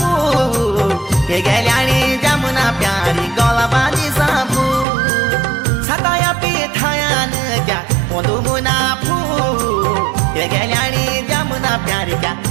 हे गेल्याणी जमुना प्यारी गळा बांधी सापू सताया पिठायान क्या पोंदू मुना फू हे गेल्याणी जमुना प्यारी क्या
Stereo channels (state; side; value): drops out; left; at 4.9 s